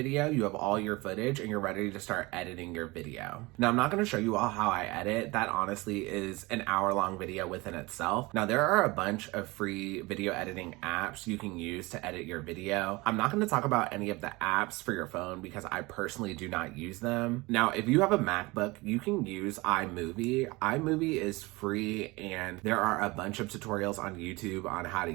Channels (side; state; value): left; quieter; 23.2 dB